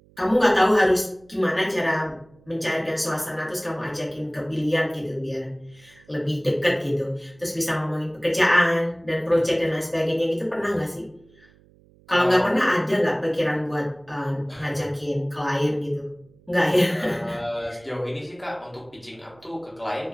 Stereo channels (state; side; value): noise; right; hum, 29 dB below the sound